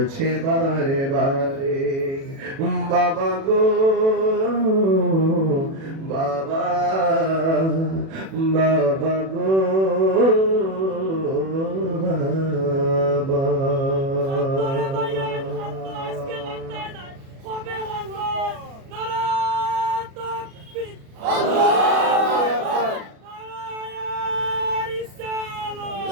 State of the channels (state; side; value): late; left; 37 ms